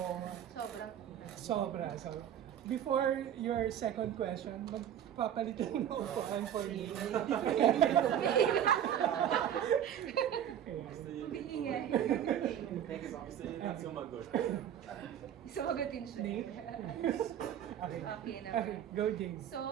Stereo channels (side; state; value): left; quieter; 10.0 dB